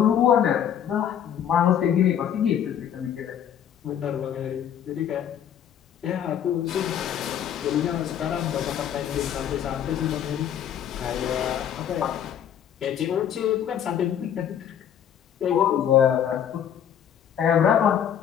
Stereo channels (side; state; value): right; quieter; 9.4 dB